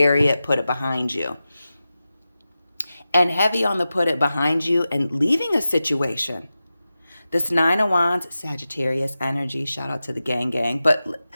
it, put it behind you. And heavy on the put it behind you and leaving a situation. This 9 of Wands, Sagittarius energy. Shout out to the gang. But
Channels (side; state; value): both; inverted; correlation -0.94